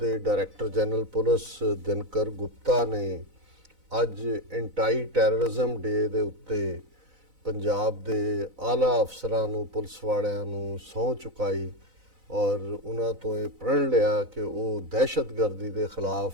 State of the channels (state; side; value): late; left; 4.0 ms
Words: director general police Dinkar Gupta ਨੇ ਅੱਜ ਐਂਟੀ ਟੈਰਰਿਜ਼ਮ ਡੇ ਦੇ ਉੱਤੇ ਪੰਜਾਬ ਦੇ ਆਲਾ ਅਫਸਰਾਂ ਨੂੰ, ਪੁਲਿਸ ਵਾਲਿਆਂ ਨੂੰ ਸਹੁੰ ਚੁਕਾਈ ਔਰ ਉਹਨਾਂ ਤੋਂ ਇਹ ਪ੍ਰਣ ਲਿਆ ਕਿ ਉਹ ਦਹਿਸ਼ਤਗਰਦੀ ਦੇ ਖਿਲਾਫ